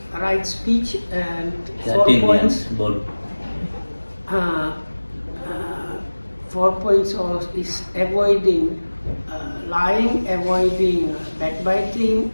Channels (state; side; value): inverted; both; correlation -1.00